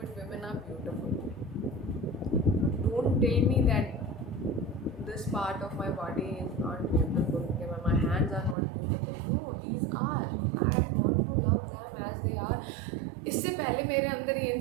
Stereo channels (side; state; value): left; drops out; at 8.6 s